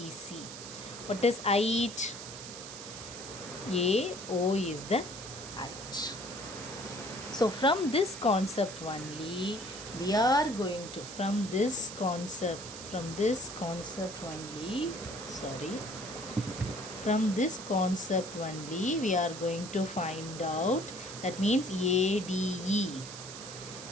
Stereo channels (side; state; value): right; noise; hiss, 11 dB below the sound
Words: What is height? AO is the height. So from this concept only, we are going to, from this concept only, From this concept only we are going to find out, that means ADE.